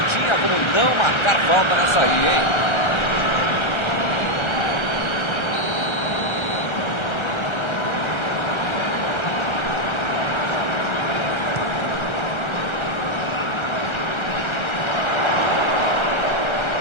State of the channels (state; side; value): late; right; 1.3 ms